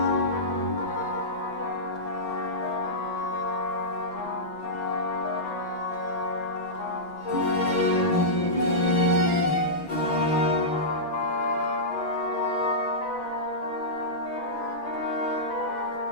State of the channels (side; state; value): right; late; 6.1 ms